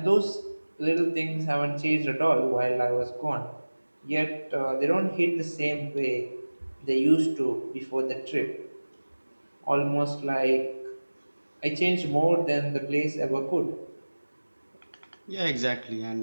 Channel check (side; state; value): both; inverted; correlation -1.00